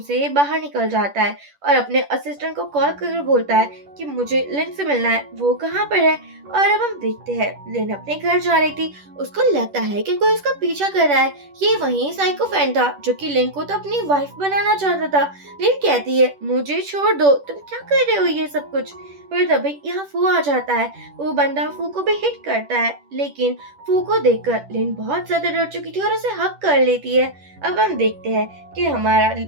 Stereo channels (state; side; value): late; left; 10 ms